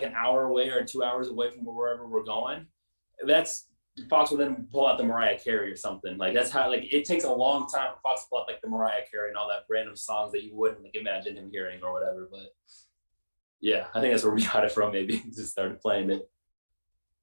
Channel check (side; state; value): both; inverted; correlation -1.00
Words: an hour away or 2 hours away from wherever we're going, Fox will then pull out the Mariah Carey or something. Like that's how it takes a long time for Fox to pull out like the Mariah Carey and all that random songs that you wouldn't imagine him hearing or whatever. But yeah, I think that's where we got it from. Maybe just started playing it.